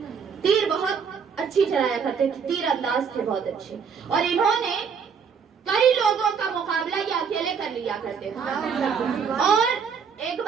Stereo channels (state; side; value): quieter; left; 6.4 dB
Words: تیر بہت اچھی چلایا کرتے تھے، تیر انداز تھے بہت اچھے، اور انہوں نے کئی لوگوں کا مقابلہ یہ اکیلے کر لیا کرتے تھے، اور ایک